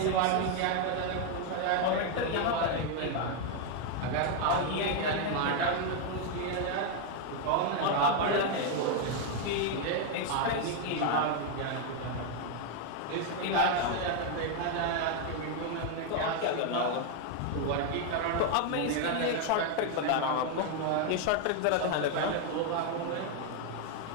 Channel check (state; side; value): different; both; correlation 0.01